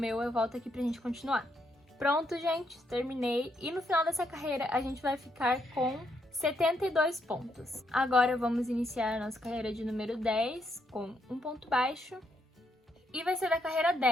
eu volto aqui pra gente continuar. Pronto, gente, terminei. E no final dessa carreira, a gente vai ficar com 72 pontos. Agora vamos iniciar a nossa carreira de número 10 com um ponto baixo. E vai ser da carreira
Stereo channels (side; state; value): both; normal; correlation 0.76